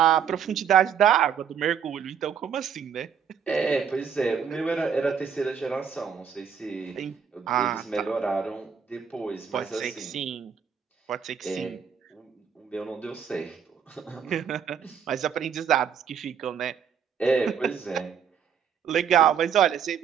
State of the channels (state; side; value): quieter; left; 7.5 dB